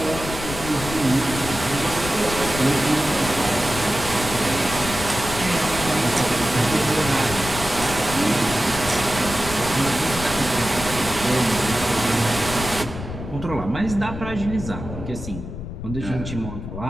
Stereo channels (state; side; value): noise; left; rumble, 9 dB below the sound